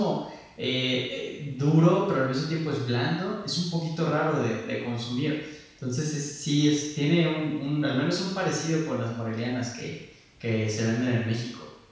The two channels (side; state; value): both; identical; correlation 1.00